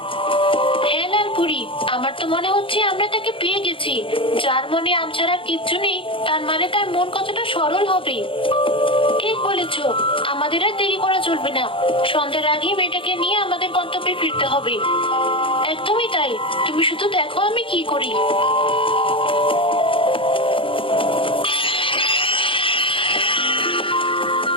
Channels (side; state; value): right; late; 0.25 ms